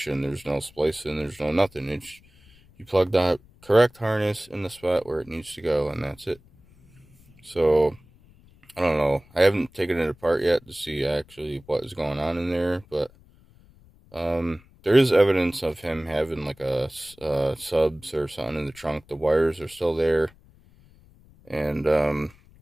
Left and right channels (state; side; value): noise; left; rumble, 27 dB below the sound